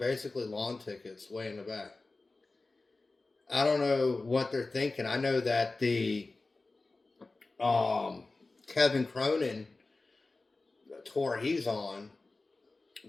lawn tickets way in the back. I don't know what they're thinking. I know that the Kevin Cronin tour he's on,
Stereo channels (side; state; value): right; quieter; 3.4 dB